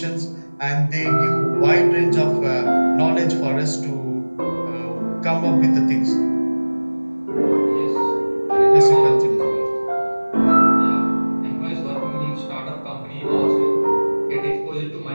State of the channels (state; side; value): inverted; both; correlation -1.00